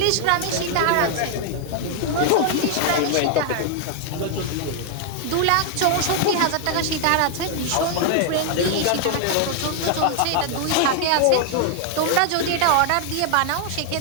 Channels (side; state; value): both; different; correlation 0.00